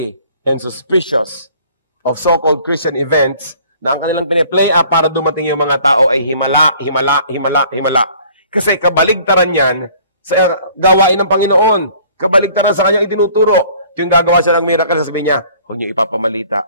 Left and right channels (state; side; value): inverted; both; correlation -0.54